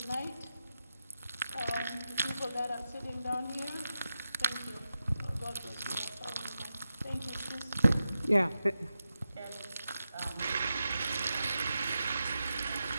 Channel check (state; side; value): inverted; both; correlation -0.91